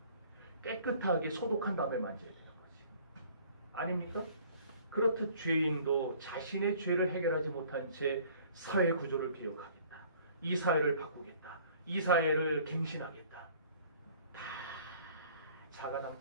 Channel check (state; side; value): inverted; both; correlation -0.53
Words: 깨끗하게 소독한 다음에 만져야 되는 거지. 아닙니까? 그렇듯 죄인도 자신의 죄를 해결하지 못한 채 사회 구조를 개혁하겠다. 이 사회를 바꾸겠다. 이 사회를 갱신하겠다. 다